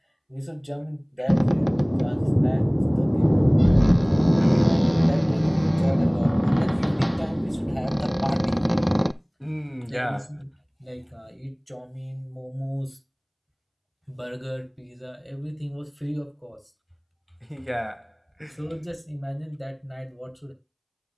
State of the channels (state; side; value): identical; both; correlation 1.00